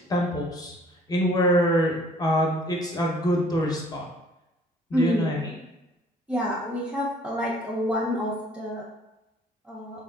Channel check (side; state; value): both; normal; correlation 0.56